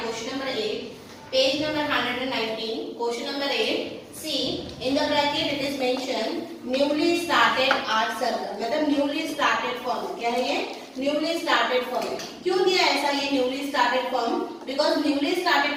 question number 8, page number 119. Question number 8. See, in the bracket it is mentioned newly started art circle. मतलब newly started form. क्या है ये? Newly started form. क्यों दिया ऐसा ये newly started form? Because newly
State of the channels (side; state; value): both; identical; correlation 1.00